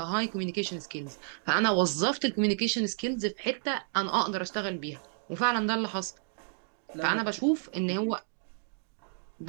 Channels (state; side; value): silent; left; digital silence